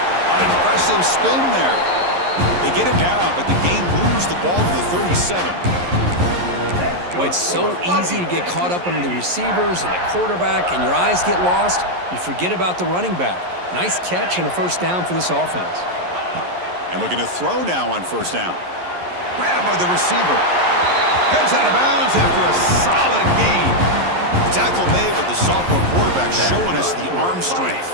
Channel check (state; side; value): late; left; 11 ms